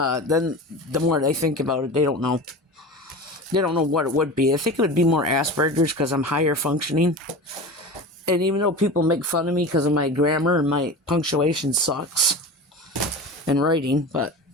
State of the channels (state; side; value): normal; both; correlation 0.31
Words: then the more they think about it, they don't know. They don't know what it would be. I think it would be more Asperger's because I'm higher functioning. And even though people make fun of me because of my grammar and my punctuation sucks in writing, but